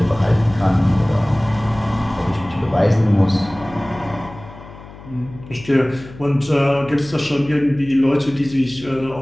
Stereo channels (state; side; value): noise; left; hum, 18 dB below the sound